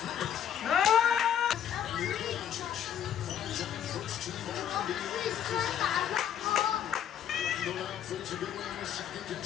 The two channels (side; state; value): right; quieter; 9.6 dB